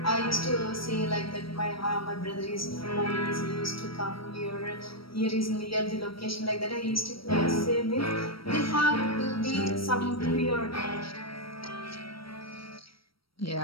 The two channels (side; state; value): right; late; 0.75 ms